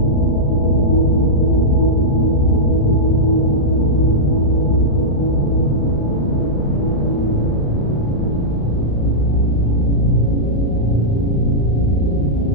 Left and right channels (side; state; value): right; late; 35 ms